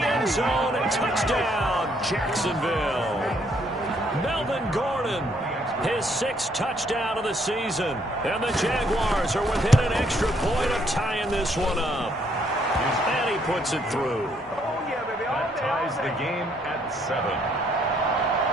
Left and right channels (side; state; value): both; normal; correlation 0.69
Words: end zone. And touchdown, Jacksonville. Melvin Gordon, his 6th touchdown of the season. And the Jaguars are within an extra point of tying this one up. And he puts it through. That ties the game at 7.